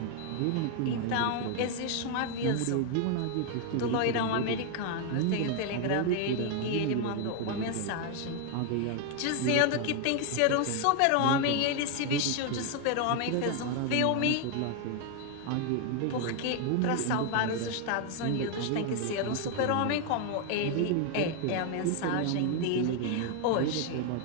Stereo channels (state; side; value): different; both; correlation 0.00